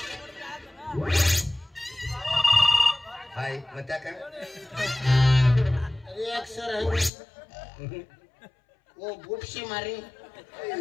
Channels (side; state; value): right; drops out; at 7.1 s